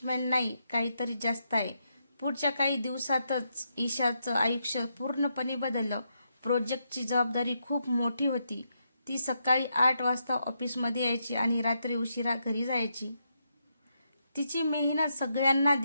नाही, काहीतरी जास्त आहे. पुढच्या काही दिवसातच ईशाचं आयुष्य पूर्णपणे बदललं. प्रोजेक्टची जबाबदारी खूप मोठी होती. ती सकाळी 8 वाजता ऑफिसमध्ये यायची आणि रात्री उशिरा घरी जायची. तिची मेहनत सगळ्यांना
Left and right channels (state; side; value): inverted; both; correlation -0.81